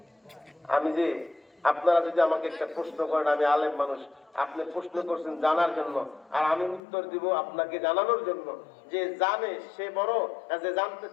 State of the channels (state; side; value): drops out; right; at 6.8 s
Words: আমি যে আপনারা যদি আমাকে একটা প্রশ্ন করেন, আমি আলেম মানুষ, আপনি প্রশ্ন করছেন জানার জন্য, আর আমি উত্তর দিব আপনাকে জানানোর জন্য। যে জানে সে বড়, যে জানতে